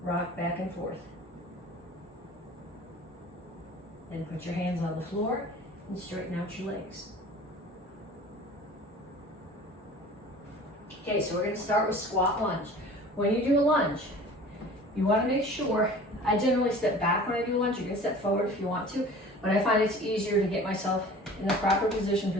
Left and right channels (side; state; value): both; normal; correlation 0.43